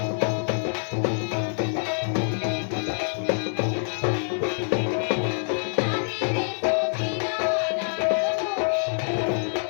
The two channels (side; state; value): right; silent; 60 dB below the other